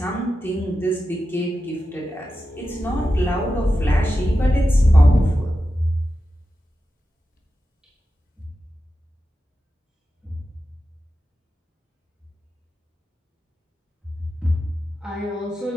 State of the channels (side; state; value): both; normal; correlation 0.91